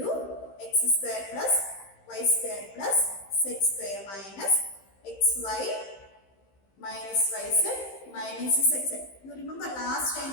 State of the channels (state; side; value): late; right; 15 ms